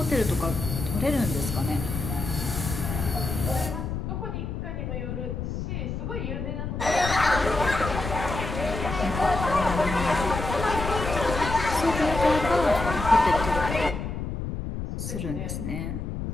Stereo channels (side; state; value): left; noise; rumble, 4 dB below the sound